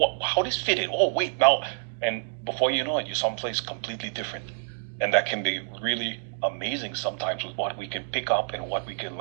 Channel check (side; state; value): left; silent; digital silence